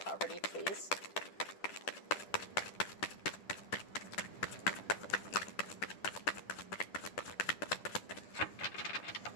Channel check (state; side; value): late; right; 10 ms